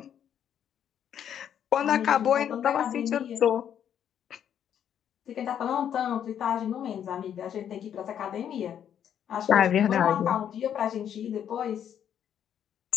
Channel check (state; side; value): quieter; right; 9.3 dB